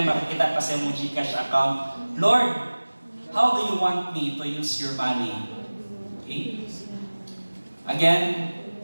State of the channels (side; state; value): both; inverted; correlation -1.00